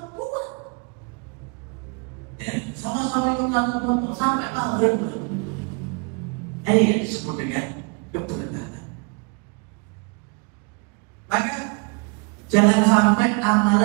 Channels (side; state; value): left; quieter; 33.3 dB